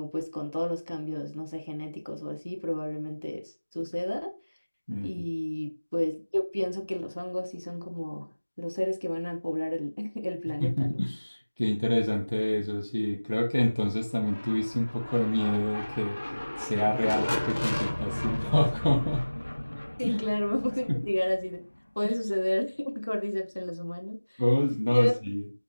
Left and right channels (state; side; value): inverted; both; correlation -1.00